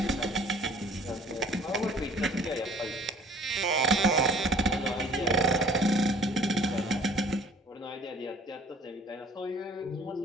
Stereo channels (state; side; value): normal; both; correlation 0.52